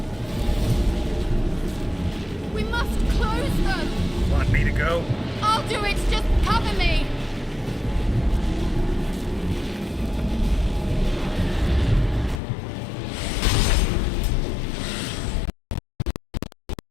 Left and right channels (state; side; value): drops out; right; at 12.4 s